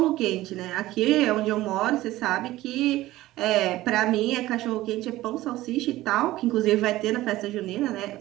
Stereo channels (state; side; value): quieter; left; 16.6 dB